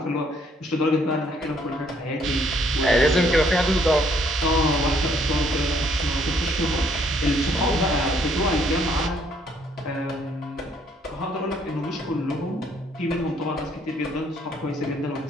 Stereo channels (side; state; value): both; normal; correlation 0.66